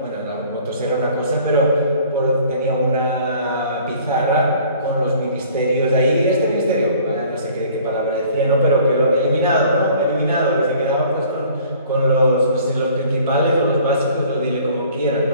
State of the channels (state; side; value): inverted; both; correlation -0.52